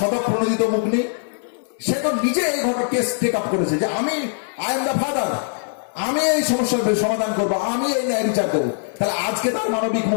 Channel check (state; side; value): silent; right; digital silence